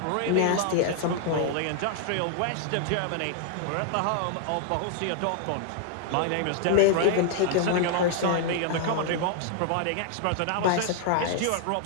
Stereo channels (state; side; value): different; both; correlation -0.01